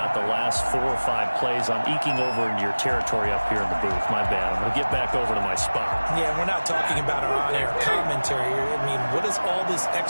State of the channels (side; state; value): both; inverted; correlation -1.00